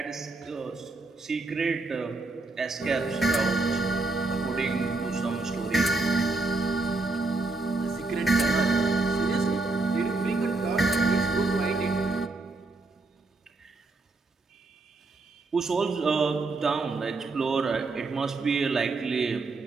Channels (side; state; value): left; quieter; 3.4 dB